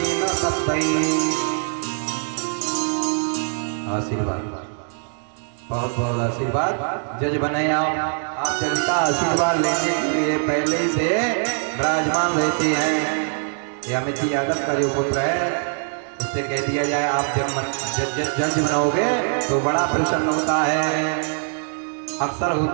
शब्दैः। आशीर्वाद, बहुत बहुत आशीर्वाद। जज बने आप जज का आशीर्वाद लेने के लिए पहले ही से विराजमान रहते हैं। ये अमित यादव का जो पुत्र है उससे कह दिया जाए आप जब जज बनोगे तो बड़ा प्रसन्न होता है, अवसर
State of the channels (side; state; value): left; silent; 57 dB below the other